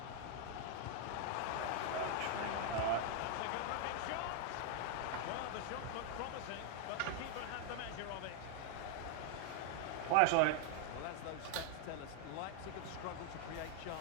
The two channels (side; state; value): both; different; correlation 0.00